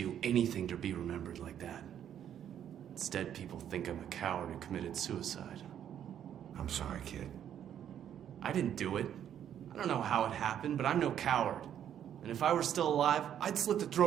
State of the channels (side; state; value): left; quieter; 9.8 dB